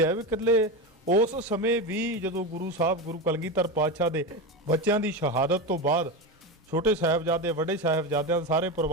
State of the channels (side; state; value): both; normal; correlation 0.18